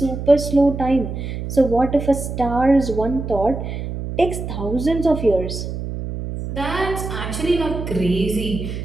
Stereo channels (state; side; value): noise; right; hum, 6 dB below the sound